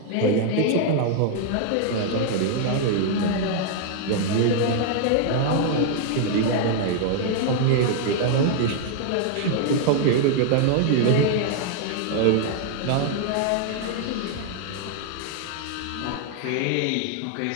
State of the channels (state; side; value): different; both; correlation 0.00